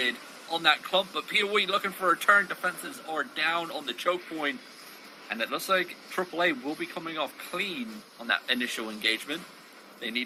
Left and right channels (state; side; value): identical; both; correlation 1.00